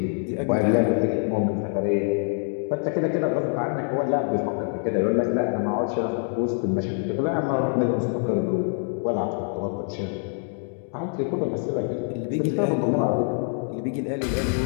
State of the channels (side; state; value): right; silent; 56 dB below the other